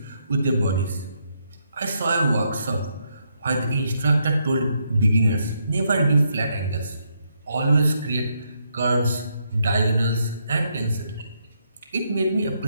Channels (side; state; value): both; inverted; correlation -0.77